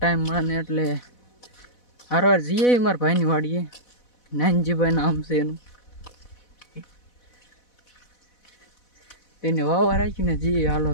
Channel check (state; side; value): late; right; 4.1 ms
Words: મળે ને એટલે હારવાર જઈએ મારા ભાઈની વાડીએ. નાનજીભાઈ નામ છે એનું. તેને વાવવા રાખીને જઈએ. હાલો